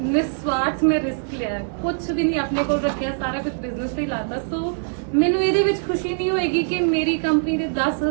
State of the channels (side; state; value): left; silent; 64 dB below the other